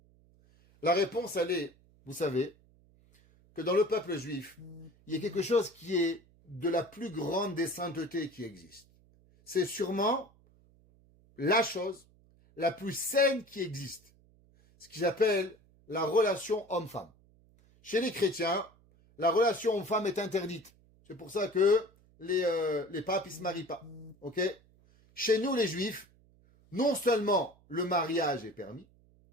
La réponse, elle est, vous savez, que dans le peuple juif, il y a quelque chose qui est de la plus grande des saintetés qui existe. C'est sûrement la chose la plus saine qui existe. Ce qu'ils appellent la relation homme-femme. Chez les chrétiens, la relation homme-femme est interdite. C'est pour ça que les papes, ils se marient pas. Ok? Chez nous, les juifs, non seulement le mariage est permis,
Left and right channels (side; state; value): right; noise; hum, 30 dB below the sound